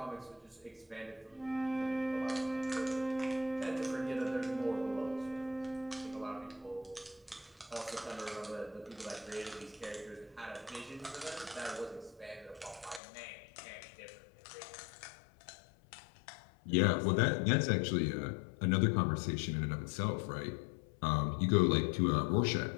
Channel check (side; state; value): right; drops out; at 13.0 s